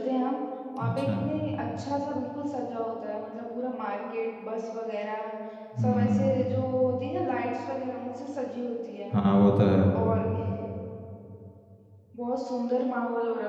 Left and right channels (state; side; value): identical; both; correlation 1.00